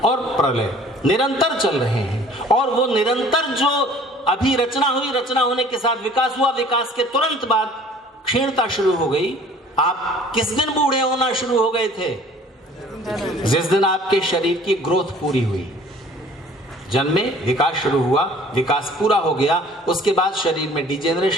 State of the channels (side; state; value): both; normal; correlation 0.51